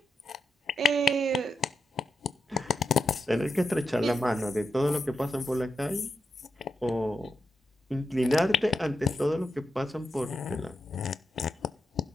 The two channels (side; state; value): both; normal; correlation 0.86